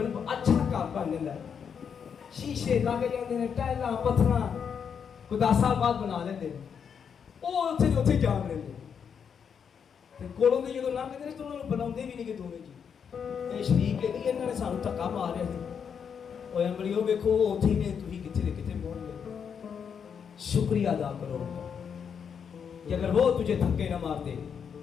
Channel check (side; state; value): right; quieter; 7.1 dB